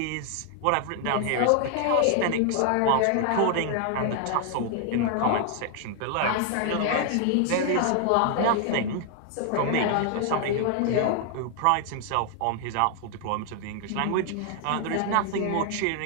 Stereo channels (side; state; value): both; different; correlation 0.00